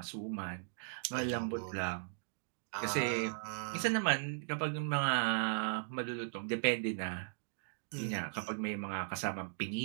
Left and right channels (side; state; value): left; silent; digital silence